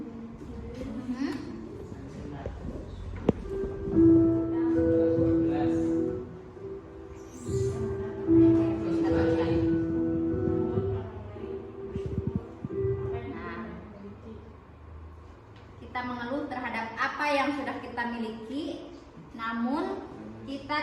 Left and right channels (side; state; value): both; identical; correlation 1.00